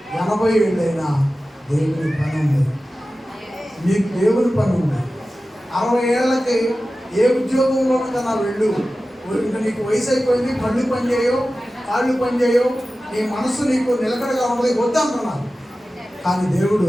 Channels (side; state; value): both; normal; correlation 0.95